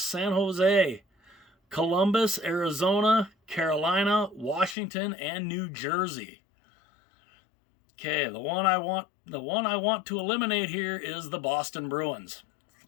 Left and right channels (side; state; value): right; drops out; at 4.8 s